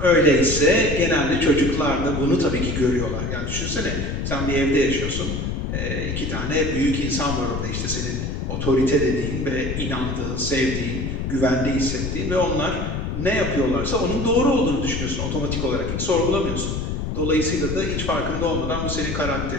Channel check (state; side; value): noise; left; rumble, 3 dB below the sound